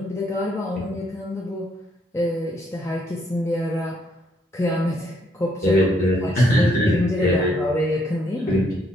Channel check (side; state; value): both; normal; correlation 0.71